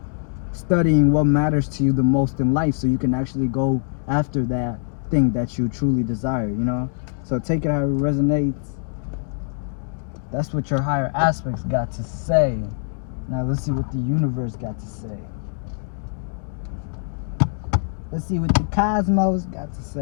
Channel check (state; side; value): silent; right; digital silence